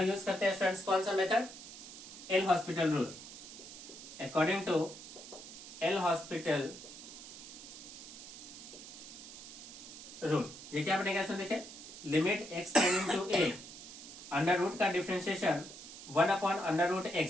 यूज करते हैं स्टूडेंट्स कौन सा method, L hospital rule. According to L hospital rule ये क्या बनेगा स्टूडेंट, देखिए limit x tending to a under root का differentiation 1 upon under root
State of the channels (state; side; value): noise; right; hiss, 13 dB below the sound